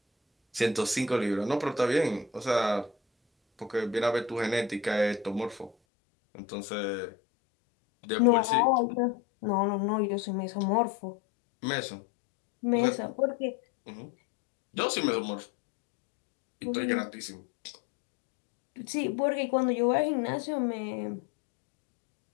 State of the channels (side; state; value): right; drops out; at 5.7 s